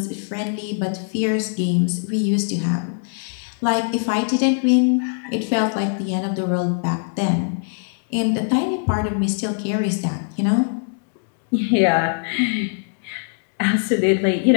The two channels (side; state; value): right; silent; 58 dB below the other